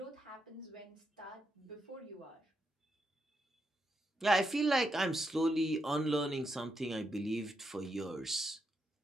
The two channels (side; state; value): both; normal; correlation 0.82